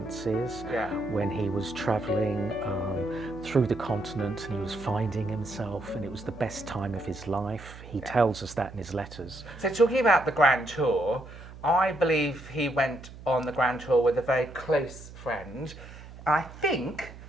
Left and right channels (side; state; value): right; noise; hum, 16 dB below the sound